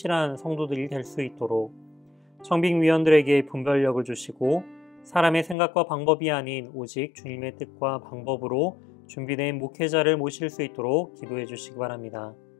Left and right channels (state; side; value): drops out; right; at 5.6 s